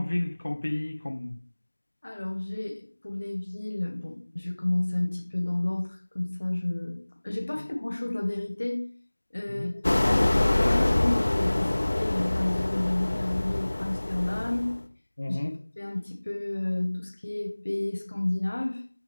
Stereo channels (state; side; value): inverted; both; correlation -1.00